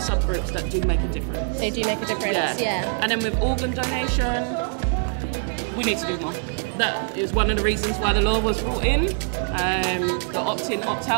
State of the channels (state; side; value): silent; left; 59 dB below the other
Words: that do make a difference. They do make a difference, yeah. And then with organ donation, we need to do more. That is one of the reasons why the law was brought in, the opt-in,